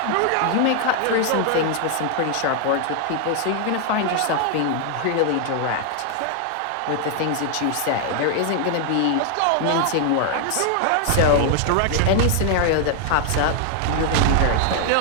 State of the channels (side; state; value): both; different; correlation 0.00